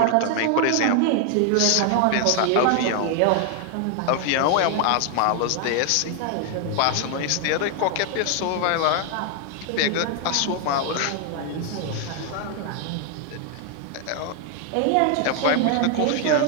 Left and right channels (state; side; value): different; both; correlation 0.00